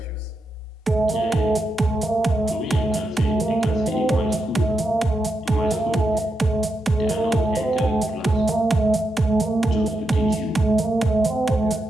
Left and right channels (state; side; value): normal; both; correlation 0.85